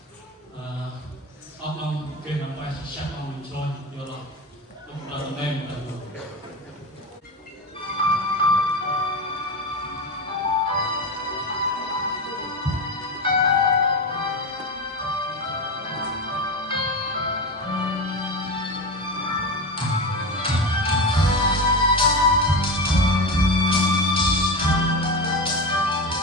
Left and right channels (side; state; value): both; normal; correlation 0.21